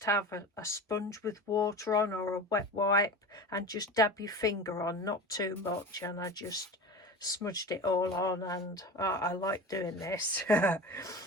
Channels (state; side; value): normal; both; correlation 0.31